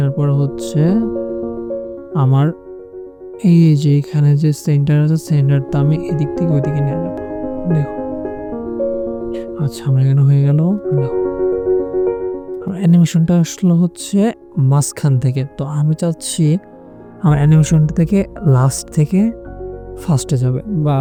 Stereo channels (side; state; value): both; identical; correlation 1.00